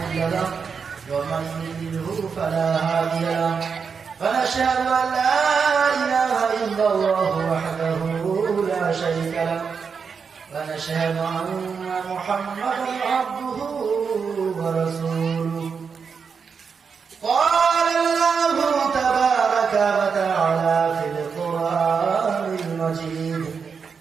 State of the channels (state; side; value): quieter; left; 5.9 dB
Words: له ومن يضلله فلا هادي له ونشهد أن لا إله إلا الله وحده لا شريك له ونشهد أن محمدا عبده ورسوله قال الله تبارك وتعالى في القرآن المجيد